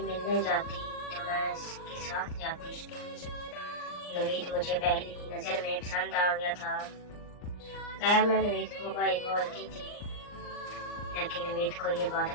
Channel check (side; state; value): right; late; 39 ms